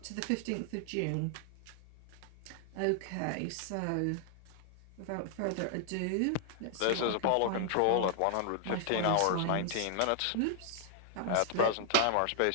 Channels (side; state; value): both; different; correlation 0.00